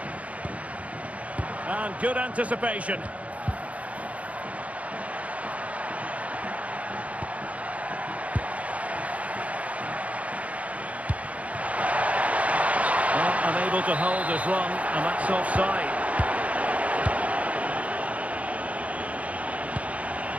And good anticipation. Unable to hold his run, and that's offside.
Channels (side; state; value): left; late; 0.067 ms